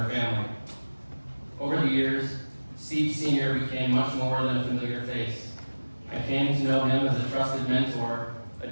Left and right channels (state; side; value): inverted; both; correlation -1.00